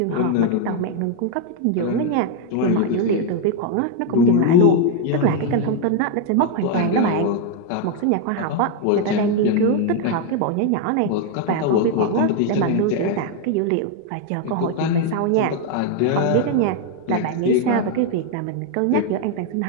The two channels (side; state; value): both; different; correlation 0.01